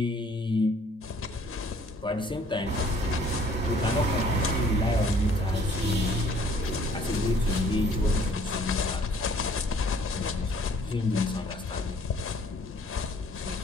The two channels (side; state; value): both; normal; correlation 0.58